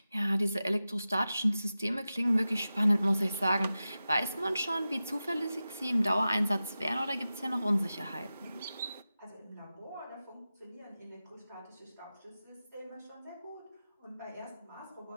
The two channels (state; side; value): inverted; both; correlation -0.94